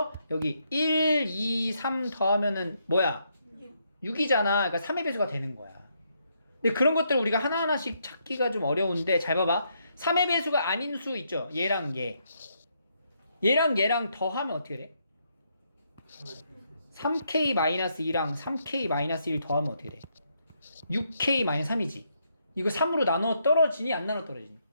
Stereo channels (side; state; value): both; inverted; correlation -0.76